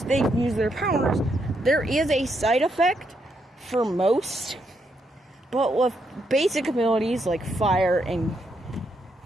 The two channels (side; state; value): both; normal; correlation 0.78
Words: they use their powers, there is a side effect for most, but with basic abilities like fire and